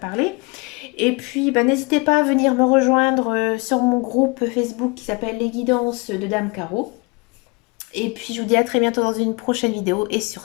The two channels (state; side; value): quieter; right; 28.9 dB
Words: Et puis, bah, n'hésitez pas à venir me rejoindre sur mon groupe Facebook qui s'appelle Les Guidances de Dame Caro. Et puis, je vous dis à très bientôt dans une prochaine vidéo. Et